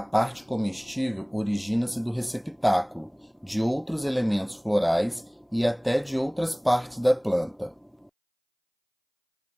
parte comestível origina-se do receptáculo, de outros elementos florais e até de outras partes da planta.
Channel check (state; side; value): identical; both; correlation 1.00